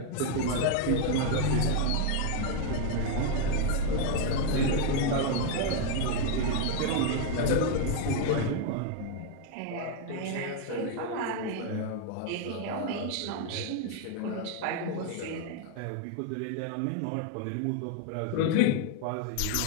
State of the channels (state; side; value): different; both; correlation 0.01